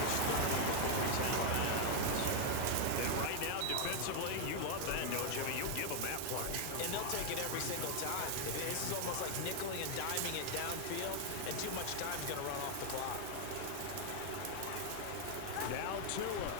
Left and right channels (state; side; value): different; both; correlation 0.00